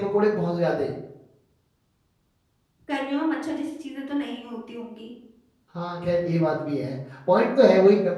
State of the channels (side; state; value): both; identical; correlation 1.00